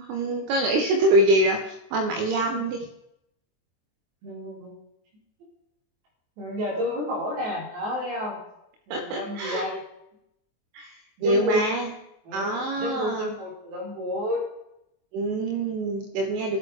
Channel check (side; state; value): left; late; 23 ms